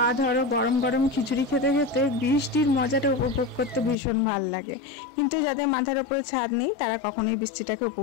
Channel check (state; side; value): drops out; right; at 4.0 s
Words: ধরো গরম গরম খিচুড়ি খেতে খেতে বৃষ্টির মজাটা উপভোগ করতে ভীষণ ভাল লাগে। কিন্তু যাদের মাথার ওপরে ছাদ নেই তারা কখনোই বৃষ্টিটাকে